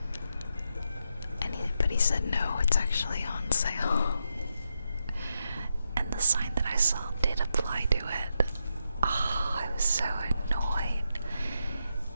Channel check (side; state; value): both; inverted; correlation -0.83